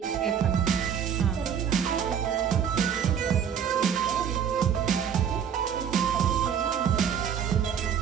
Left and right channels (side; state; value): left; quieter; 8.1 dB